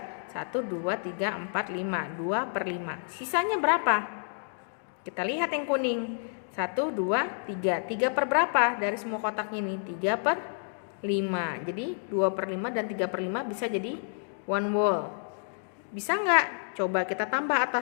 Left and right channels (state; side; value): silent; right; digital silence